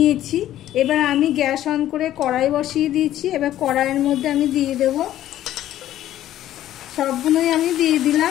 এবার আমি গ্যাস অন করে কড়াই বসিয়ে দিয়েছি। এবার কড়াইয়ের মধ্যে আমি দিয়ে দেব, সবগুলোই আমি দিয়ে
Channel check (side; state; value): right; quieter; 12.8 dB